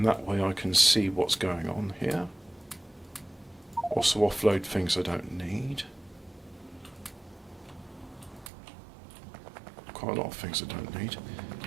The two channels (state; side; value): drops out; left; at 8.5 s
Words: that way I can see what's going on here. Also offload things I don't need. Quite a lot of things I don't need.